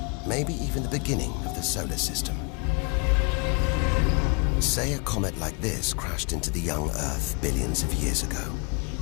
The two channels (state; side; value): quieter; right; 33.1 dB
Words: Maybe even the beginning of the solar system. Say a comet like this crashed into the young Earth billions of years ago.